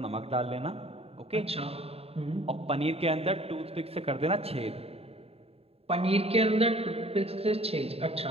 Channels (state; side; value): late; left; 0.29 ms